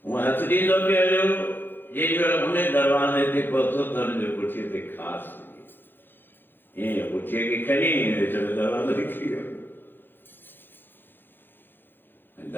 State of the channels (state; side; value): late; right; 0.098 ms